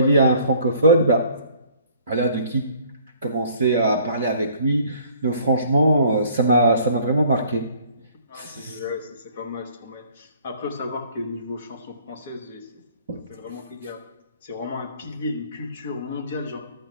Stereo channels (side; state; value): both; inverted; correlation -0.56